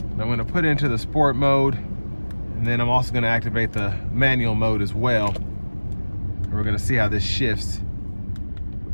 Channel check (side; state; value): both; inverted; correlation -1.00